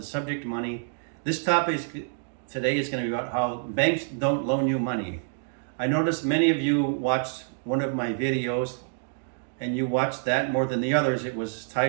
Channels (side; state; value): left; silent; digital silence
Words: subject money. This topic today is going to be about how banks don't loan you money. I noticed many of you watched one of my videos and you watched that more than the others. It was